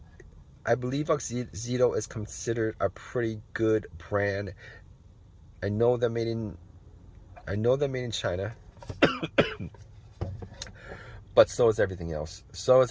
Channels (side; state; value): both; identical; correlation 1.00